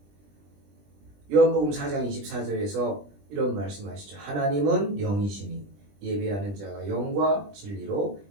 요한복음 4장 24절에서 이런 말씀하시죠. 하나님은 영이시니 예배하는 자가 영과 진리로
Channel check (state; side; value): late; left; 20 ms